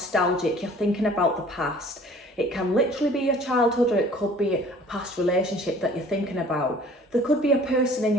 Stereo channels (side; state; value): both; normal; correlation 0.51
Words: You're thinking about the past. It can literally be your childhood, or it could be a past relationship that you're thinking about. There could be a person in